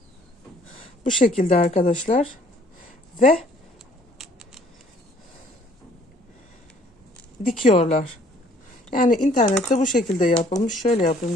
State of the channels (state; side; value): normal; both; correlation 0.60